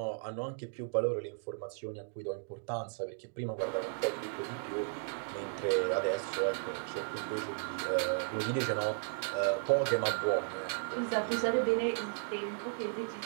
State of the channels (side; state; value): left; silent; digital silence